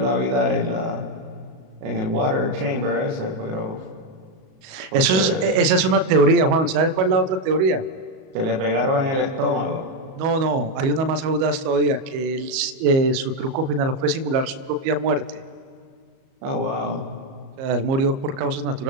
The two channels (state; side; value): late; left; 37 ms